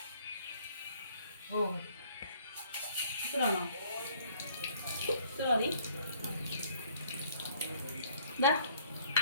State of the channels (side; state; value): both; inverted; correlation -0.60